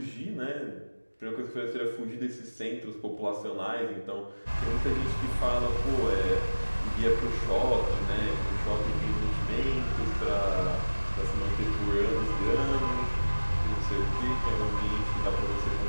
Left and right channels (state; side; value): inverted; both; correlation -1.00